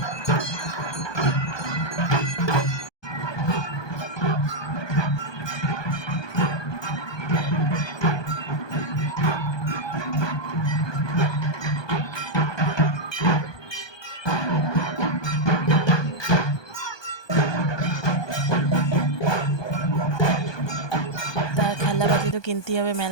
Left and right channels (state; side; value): late; right; 1.2 ms